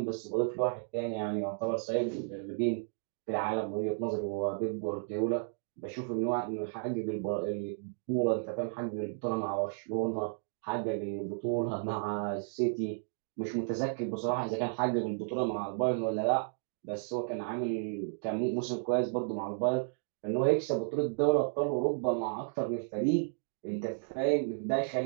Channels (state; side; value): silent; left; digital silence